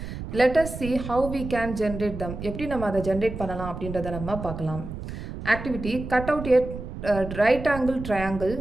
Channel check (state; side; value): noise; right; rumble, 9 dB below the sound